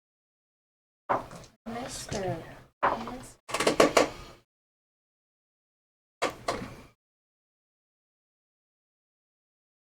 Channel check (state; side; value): identical; both; correlation 1.00